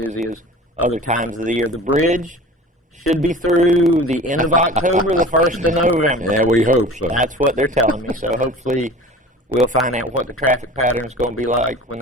as other times of the year. The bridge should be through the end of October, the 1st of November. Yeah, we hope so. That's what they're telling me. So hopefully we'll find out what the traffic pattern is going to be like when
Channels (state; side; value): normal; both; correlation 0.40